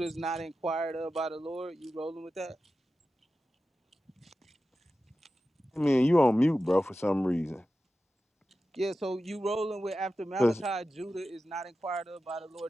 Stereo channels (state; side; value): normal; both; correlation 0.93